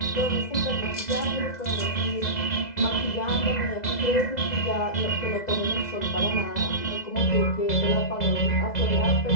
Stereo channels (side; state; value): right; late; 2.0 ms